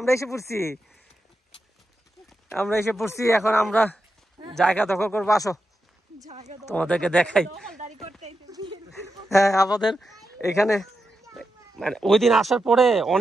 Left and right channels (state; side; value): normal; both; correlation 0.88